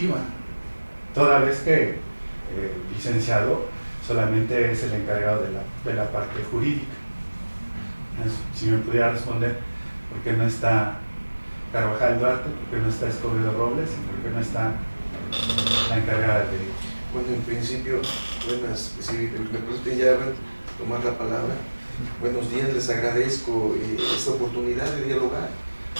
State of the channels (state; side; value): inverted; both; correlation -1.00